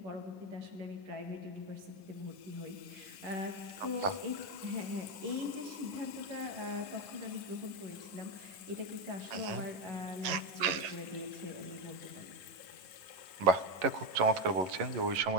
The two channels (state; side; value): late; left; 11 ms